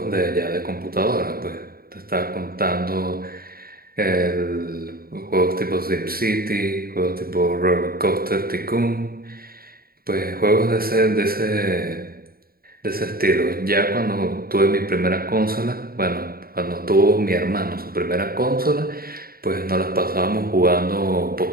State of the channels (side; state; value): left; late; 0.43 ms